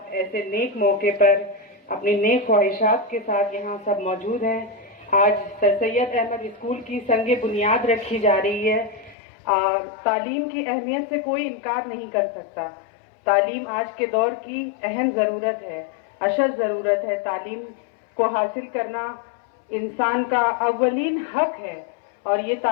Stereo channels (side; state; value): right; drops out; at 9.2 s